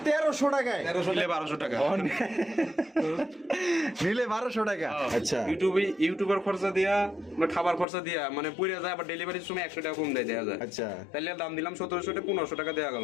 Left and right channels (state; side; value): drops out; right; at 7.9 s